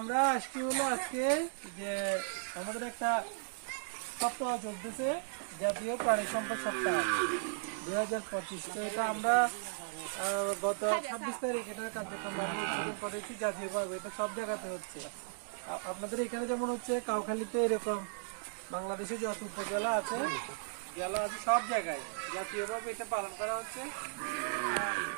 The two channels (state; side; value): silent; left; digital silence